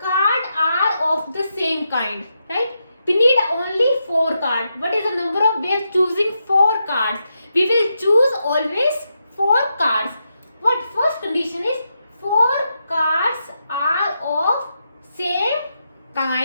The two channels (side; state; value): both; inverted; correlation -0.85